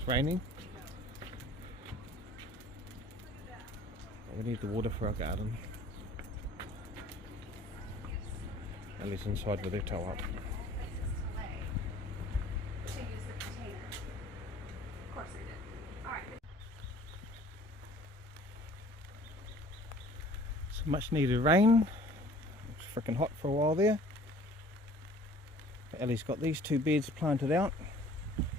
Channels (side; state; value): both; normal; correlation 0.51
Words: raining. But we need the water for our garden. Ellie's inside with her toe up. Some much needed rain. It's freaking hot for a while there. Ellie's got these 2 beds planted out,